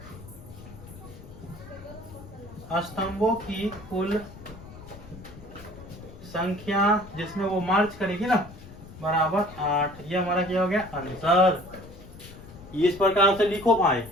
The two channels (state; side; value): noise; left; rumble, 17 dB below the sound